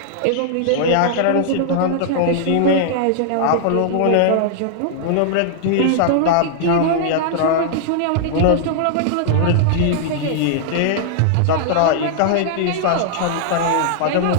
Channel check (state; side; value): different; both; correlation -0.01